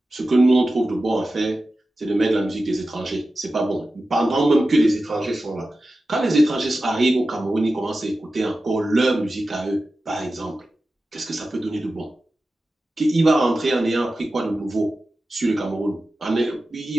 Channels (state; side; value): normal; both; correlation 0.94